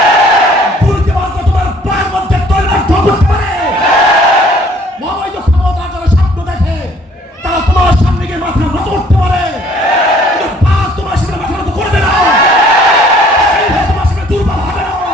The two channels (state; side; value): normal; both; correlation 0.58